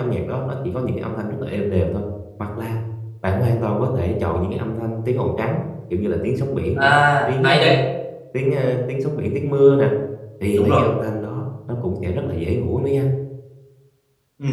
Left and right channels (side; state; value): both; identical; correlation 1.00